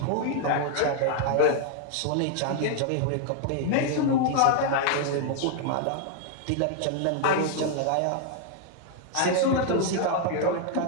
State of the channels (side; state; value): both; different; correlation 0.00